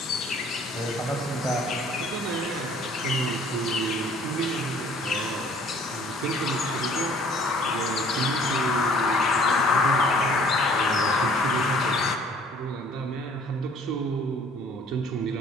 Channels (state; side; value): normal; both; correlation 0.55